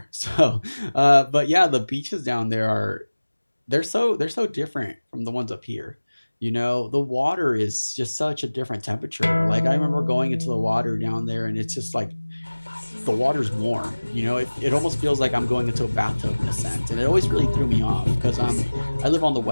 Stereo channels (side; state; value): both; inverted; correlation -1.00